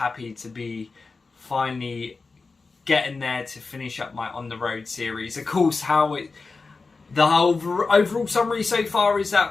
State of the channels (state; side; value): quieter; right; 4.1 dB